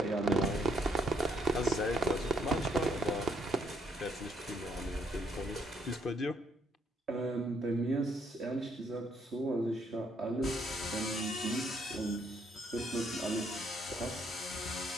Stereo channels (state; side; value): normal; both; correlation 0.71